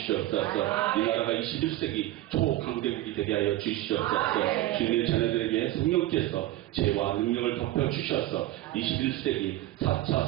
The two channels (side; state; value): left; quieter; 15.6 dB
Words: 이 나라가 21세기 초강대국이 되게 하여 주시옵소서. 주님의 자녀들에게 성령께서 죄와 능력을 덮어주셔서 21세기 4차